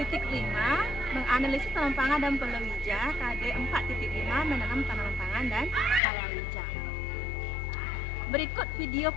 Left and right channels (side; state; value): right; drops out; at 6.0 s